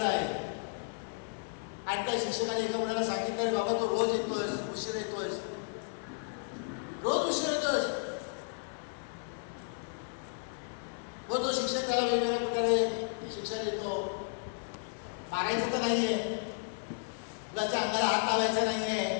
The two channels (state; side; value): silent; right; 56 dB below the other